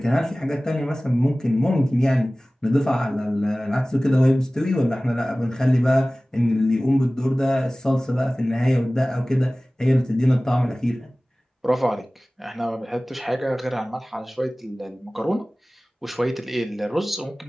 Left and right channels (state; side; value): normal; both; correlation 0.98